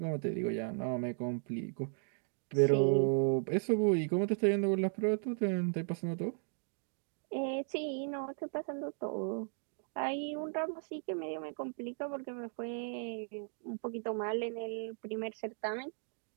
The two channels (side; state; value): left; silent; 54 dB below the other